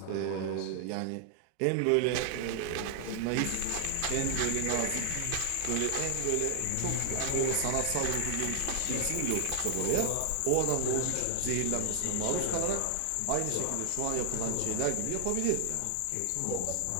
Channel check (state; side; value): different; both; correlation 0.00